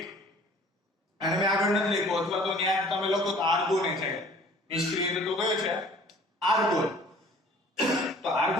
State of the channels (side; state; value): both; normal; correlation 0.50